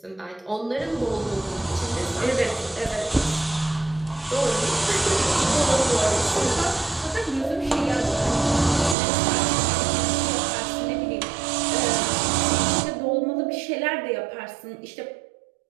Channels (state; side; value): drops out; left; at 9.0 s